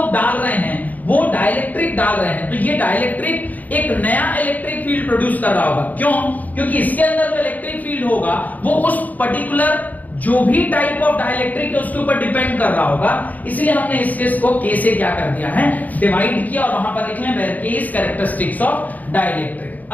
डाल रहे हैं वो डाइलेक्ट्रिक डाल रहे हैं, तो ये डाइलेक्ट्रिक एक नया इलेक्ट्रिक फील्ड प्रोड्यूस कर रहा होगा। क्यों? क्योंकि इसके अंदर जो इलेक्ट्रिक फील्ड होगा वो उस पर्टिकुलर जो भी टाइप ऑफ डाइलेक्ट्रिक है उसके ऊपर डिपेंड कर रहा होगा, इसलिए हमने इस केस को k से क्या कर दिया है, डिवाइड किया, और वहां पर लिख लें where k is characteristics of dielectric.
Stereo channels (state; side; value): late; right; 0.079 ms